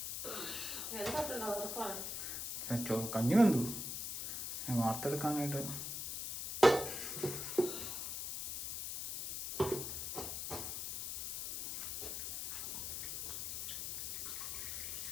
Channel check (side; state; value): left; noise; hiss, 3 dB below the sound